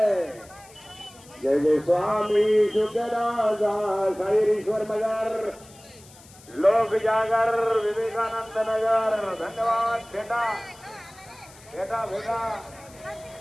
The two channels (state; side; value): noise; left; hiss, 23 dB below the sound